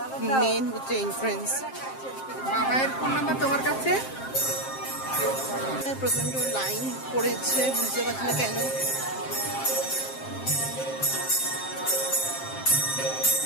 মেন হচ্ছে এন্ট্রেন্স। মায়ের ফোন নাম্বার তোমার কাছে? প্রচন্ড লাইন পড়েছে, বুঝতে পারছি না কেন।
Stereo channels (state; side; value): late; right; 7.6 ms